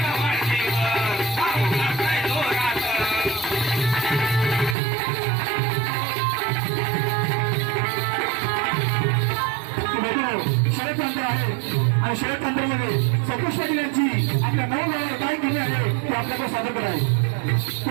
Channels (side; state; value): left; drops out; at 4.8 s